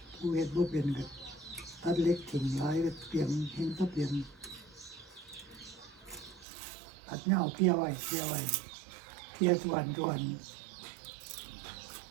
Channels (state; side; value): drops out; left; at 6.5 s